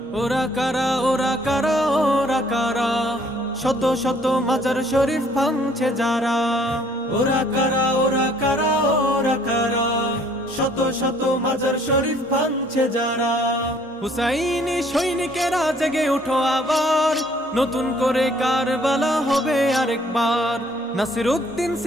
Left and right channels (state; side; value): normal; both; correlation 0.60